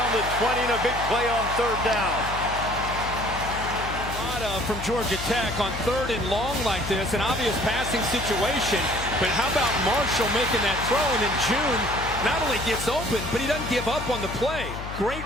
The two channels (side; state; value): left; noise; hum, 9 dB below the sound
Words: the 20, and a big play on 3rd down. From Georgia Tech on 3rd and long like this, an obvious passing situation. But how about Marshall making that throw, and then June not only gets open, but he doesn't give up on the play. Great